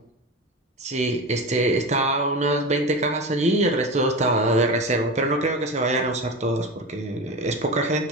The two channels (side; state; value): both; normal; correlation 0.25